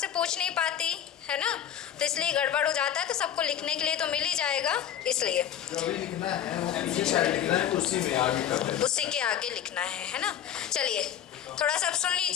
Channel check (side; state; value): right; quieter; 10.0 dB